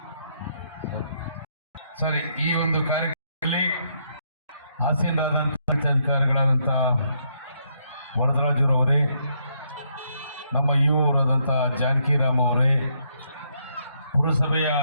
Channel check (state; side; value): inverted; both; correlation -0.74